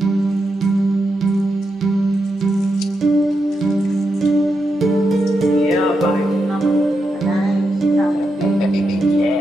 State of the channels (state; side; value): normal; both; correlation 0.85